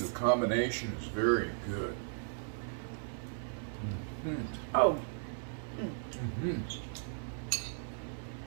the combination is very good. Mm-hmm. Oh. Mm-hmm.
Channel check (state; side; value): silent; left; 54 dB below the other